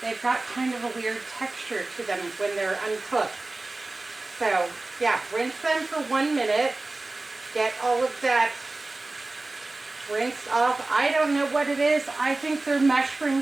kind of a weird texture to them when they're uncooked. So yeah, rinse them for 1 minute. Get all of that rinsed off. I don't know what it is. I think they're mushroom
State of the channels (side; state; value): left; quieter; 3.1 dB